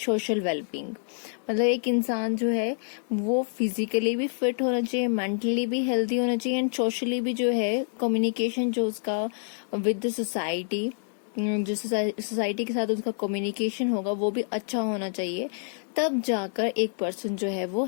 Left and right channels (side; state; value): right; silent; digital silence